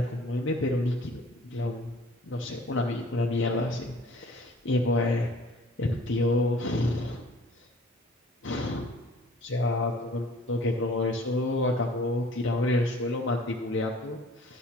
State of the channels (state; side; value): normal; both; correlation 0.52